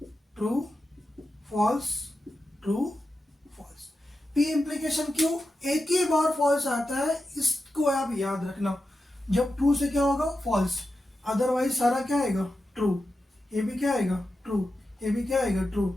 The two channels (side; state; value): both; normal; correlation 0.91